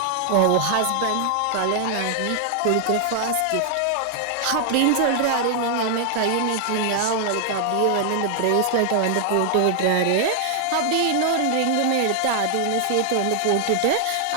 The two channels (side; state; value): both; different; correlation 0.00